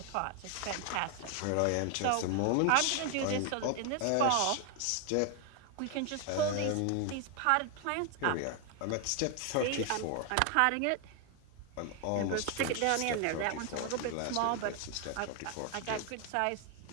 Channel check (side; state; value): both; different; correlation 0.01